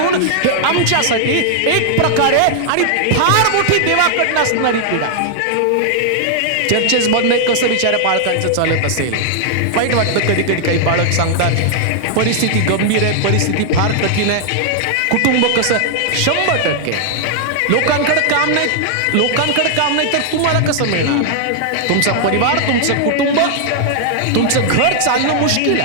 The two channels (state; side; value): different; both; correlation -0.01